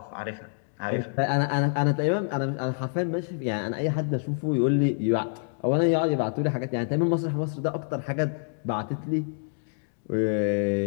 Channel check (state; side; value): silent; right; digital silence